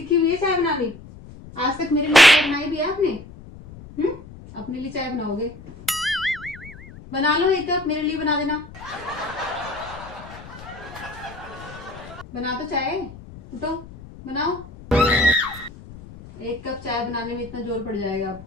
हुई है चाय बनानी? आज तक मेरे लिए चाय बनाई भी है आपने? अपने लिए चाय बनाओगे? बना लो, एक कप मेरे लिए बना देना। बना तो चाय, उठो बनाओ। एक कप चाय बनाने में इतना जोर पड़ जाएगा अब।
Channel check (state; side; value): noise; left; rumble, 17 dB below the sound